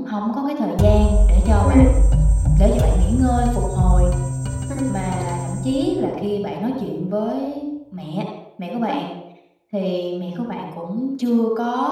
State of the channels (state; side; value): identical; both; correlation 1.00